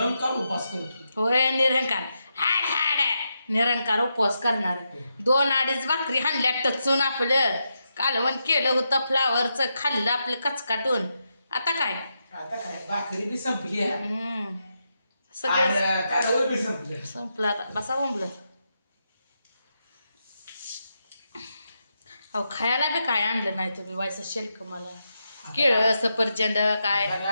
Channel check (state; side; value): inverted; both; correlation -0.85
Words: उपास करतो होय निरंकार हाड हाड निरंकार उपवास करणार 2-2.5 भाकरी हाणल्या टचून आपलं कालवण केलं होतं फ्लावरचं खाल्लं आपलं कचकाटून आता काय आता काय भाकरी बी संपली आहे सगळं आणि कालवण बी संपले संपलं आता बसा बोंबलं अहो खायला बी काय आणलं नाही तुम्ही व्हायचं शेल्क मला केळं सफरचंद काय